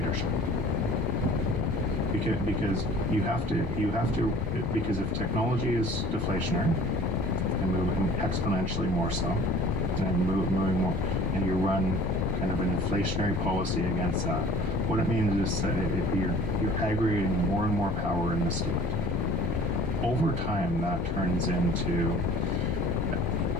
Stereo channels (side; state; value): both; normal; correlation 0.48